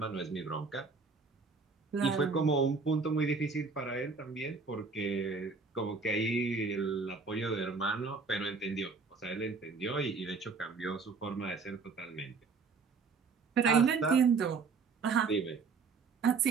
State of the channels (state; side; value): quieter; left; 4.6 dB